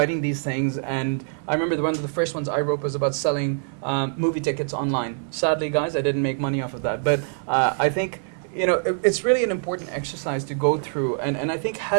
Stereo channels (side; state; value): left; silent; 62 dB below the other